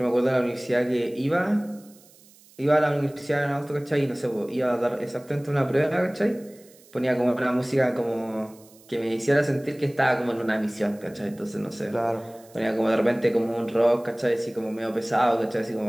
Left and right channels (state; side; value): noise; right; hiss, 26 dB below the sound